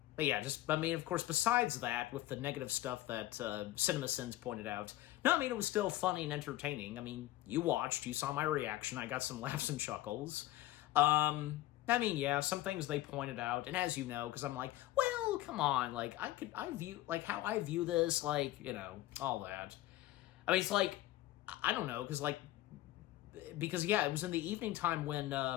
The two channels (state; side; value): quieter; right; 15.7 dB